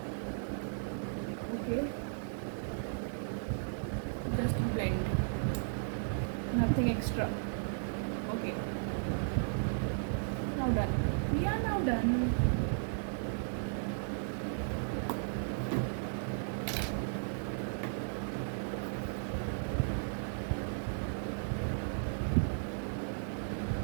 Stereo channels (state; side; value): silent; left; digital silence